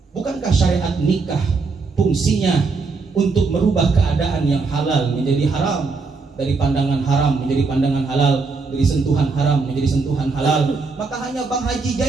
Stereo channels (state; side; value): quieter; left; 4.3 dB